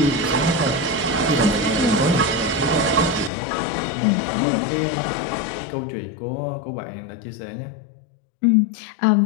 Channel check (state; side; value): drops out; right; at 3.3 s